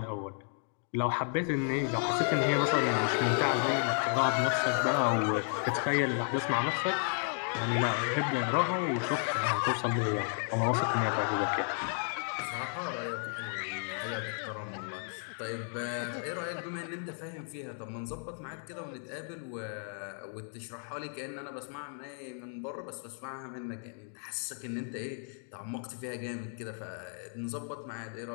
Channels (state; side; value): silent; right; 56 dB below the other